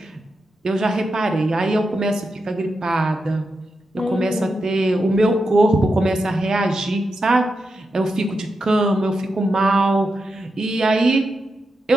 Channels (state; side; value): normal; both; correlation 0.87